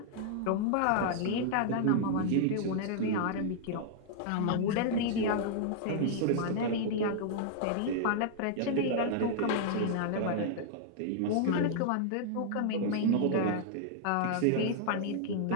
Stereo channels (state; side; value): different; both; correlation -0.01